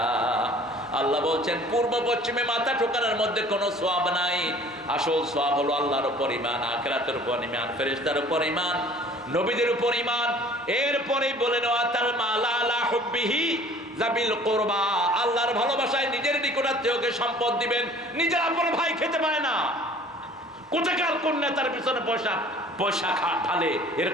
আল্লাহ বলছেন, পূর্ব পশ্চিমে মাথা ঠোকানোর মধ্যে কোনো সওয়াব নাই। আসল সওয়াব হলো আল্লাহর উপর ঈমান, আখিরাতের উপর ঈমান, ফেরেশতার উপর ঈমান, নবীদের উপর ঈমান। এরপরেই বলেন, ওয়াতাল মালা আলা হুব্বিহি যাবিল কুরবা, আল্লাহর ভালোবাসায় নিজের নিকটাত্মীয়কে সম্পদ দিবেন। নিজের আপন ভাই খেতে পায় না, কোথাকার কোন নেতার পিছনে পয়সা ঢালে,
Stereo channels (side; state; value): both; normal; correlation 0.50